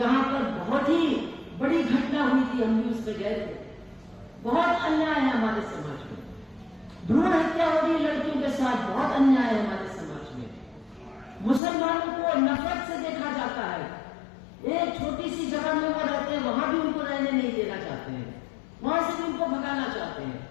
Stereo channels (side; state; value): right; drops out; at 11.6 s